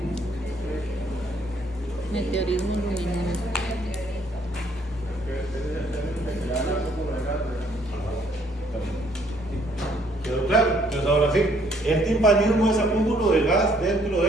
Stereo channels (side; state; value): both; normal; correlation 0.65